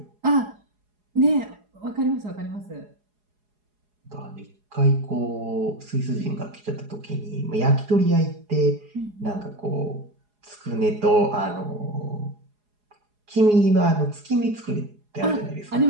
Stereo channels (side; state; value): left; late; 4.8 ms